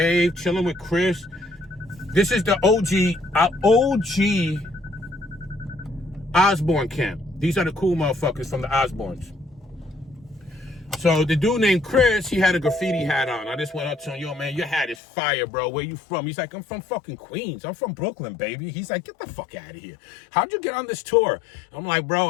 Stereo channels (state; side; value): drops out; right; at 15.0 s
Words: chilling with Chris. This is the OG Osbourne camp. These are the cool motherfuckers from the Osbournes. So the dude named Chris, he had a graffiti hat on. I just went up to him, yo, man, your hat is fire, bro. Where you from? He's like, I'm from fucking Queens. I'm from Brooklyn, baby. He's like, get the fuck out of here. How'd you get on this tour? I'm like, bro,